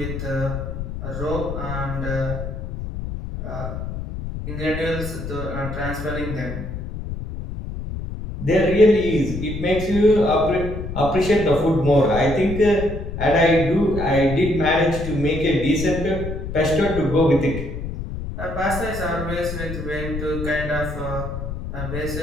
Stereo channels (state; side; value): noise; left; rumble, 7 dB below the sound